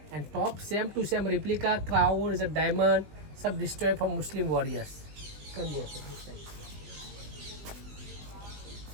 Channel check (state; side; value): late; left; 20 ms